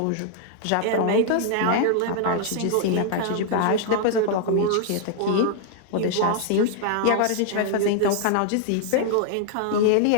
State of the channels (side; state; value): both; different; correlation 0.00